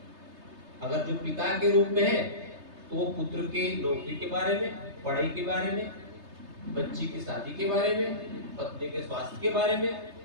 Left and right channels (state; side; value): late; left; 3.3 ms